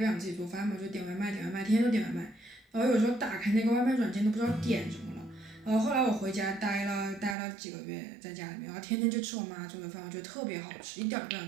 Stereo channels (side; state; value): left; drops out; at 7.4 s